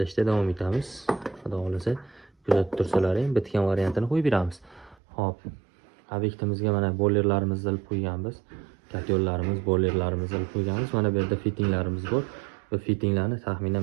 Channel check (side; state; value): left; drops out; at 5.0 s